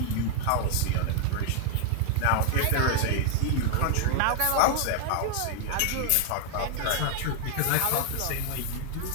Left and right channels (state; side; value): different; both; correlation 0.00